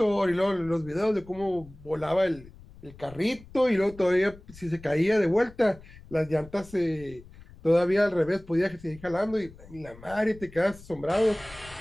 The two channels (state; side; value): noise; left; rumble, 20 dB below the sound